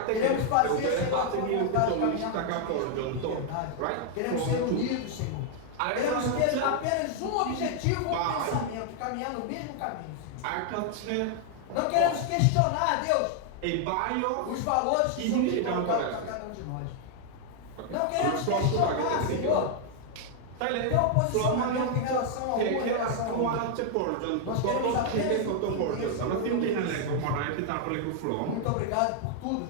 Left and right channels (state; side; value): different; both; correlation 0.00